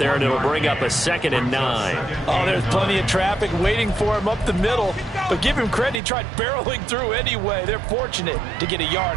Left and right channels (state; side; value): drops out; left; at 6.0 s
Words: and it'll bring up a 2nd and 9. Oh, there's plenty of traffic waiting for him up the middle, but give him credit. He tried barreling through anyway. They're fortunate to get a